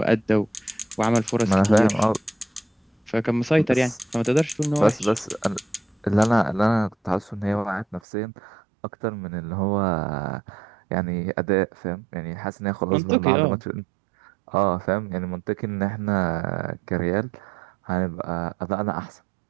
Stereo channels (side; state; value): left; drops out; at 8.0 s